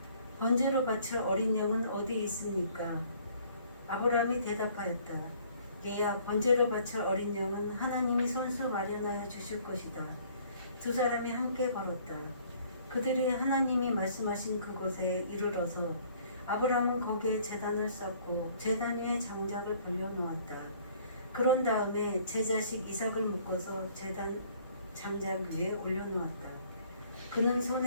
번제로 바칠 어린 양은 어디 있습니까? 아브라함이 대답하였다. 얘야 번제로 바칠 어린 양은 하나님이 손수 마련하여 주실 것이다. 두 사람이 함께 걸었다. 그들이 하나님이 말씀하신 그곳에 이르러서 아브라함은 거기에 제단을 쌓고 제단 위에 장작을 벌려놓았다. 그런 다음에 제 자식 이삭을 묶어서 제단 장작 위에 올려놓았다. 그는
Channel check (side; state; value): both; inverted; correlation -0.58